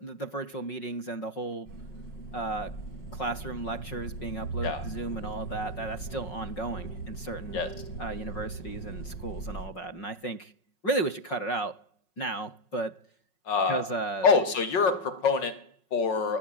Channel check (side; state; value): right; late; 5.5 ms